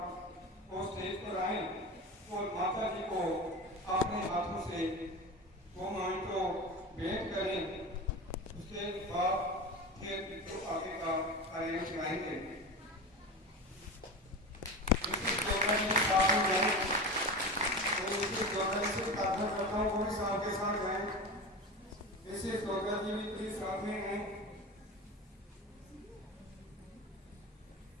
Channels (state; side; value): normal; both; correlation 0.27